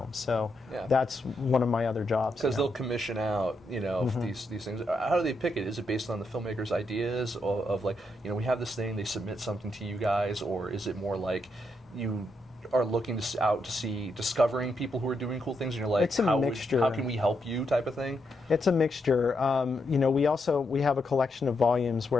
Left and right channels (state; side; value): normal; both; correlation 0.81